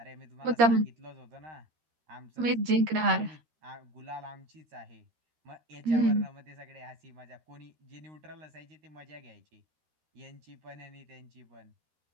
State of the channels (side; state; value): left; late; 13 ms